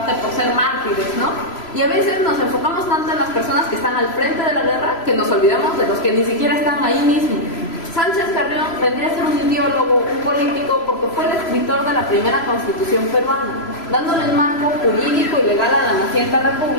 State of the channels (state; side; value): late; right; 3.0 ms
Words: por ser mártires, ¿no? Y a veces nos enfocamos tanto en las personas que están al frente de la guerra que nos olvidamos de los que ni siquiera están ahí mismo. Sánchez Carrión vendría a ser un ideólogo, un político, porque fue el escritor de la primera constitución peruana, dándole el marco jurídico y legal a la naciente